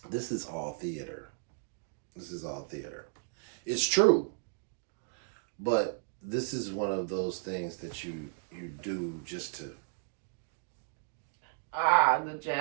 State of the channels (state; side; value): silent; left; digital silence